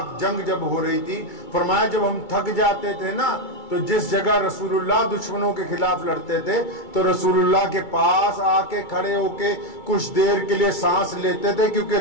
جنگ جب ہو رہی تھی, فرمایا جب ہم تھک جاتے تھے نا تو جس جگہ رسول اللہ دشمنوں کے خلاف لڑتے تھے تو رسول اللہ کے پاس آ کے کھڑے ہو کے کچھ دیر کے لیے سانس لیتے تھے,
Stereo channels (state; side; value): late; right; 2.3 ms